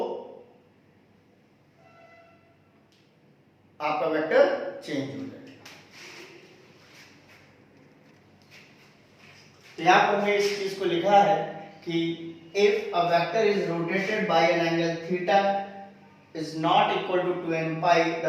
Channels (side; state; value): both; identical; correlation 1.00